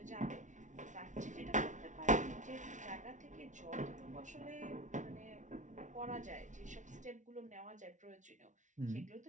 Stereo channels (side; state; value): left; late; 0.36 ms